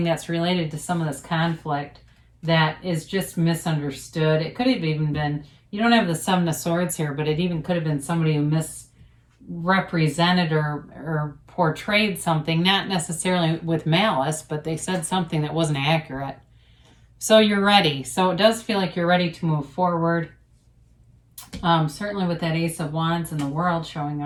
that's related to some of this conflict that is just misunderstood. It could have even been, you don't have the Seven of Swords here, but it even could have been somebody who misrepresented or portrayed something, not necessarily with malice, but they said something that wasn't accurate. So you're ready. So it does feel like you're ready to move forward. Certainly with that Ace of Wands and the World showing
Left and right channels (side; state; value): both; identical; correlation 1.00